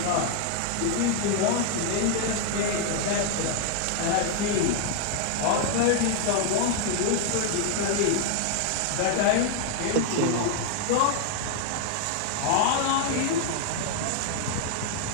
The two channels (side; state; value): both; different; correlation 0.00